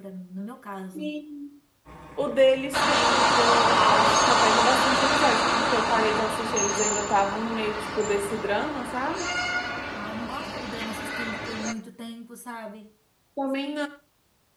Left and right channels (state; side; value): identical; both; correlation 1.00